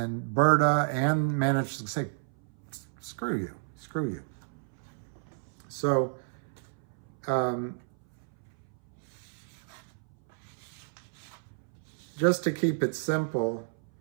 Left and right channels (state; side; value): silent; left; 57 dB below the other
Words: Berta and managed to say, screw you. So, just to keep it simple,